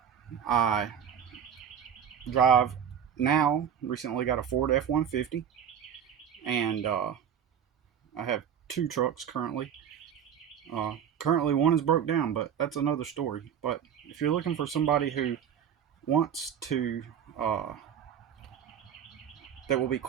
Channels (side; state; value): left; quieter; 8.5 dB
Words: I drive now. Recently got a Ford F-150, and I have two trucks currently. Currently, one is broke down, but that's another story. But if you're looking for somebody who wants to, that will be